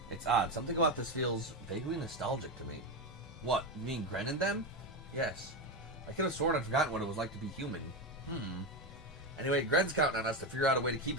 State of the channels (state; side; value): normal; both; correlation 0.13